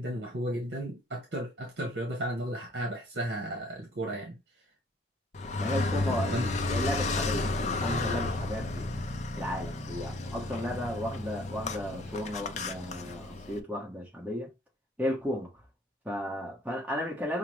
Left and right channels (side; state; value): both; normal; correlation 0.59